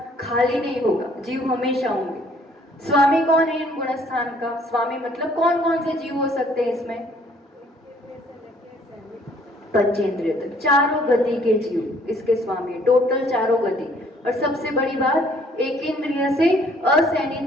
खाली नहीं होगा, जीव हमेशा होंगे। स्वामी कौन है इन गुणस्थान का? स्वामी मतलब कौन कौन से जीव हो सकते हैं इसमें? पंचेंद्रिय तक, चारों गति के जीव इसके स्वामी, टोटल चारों गति। और सबसे बड़ी बात, एक इंद्रिय से असैनी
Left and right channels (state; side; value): normal; both; correlation 0.61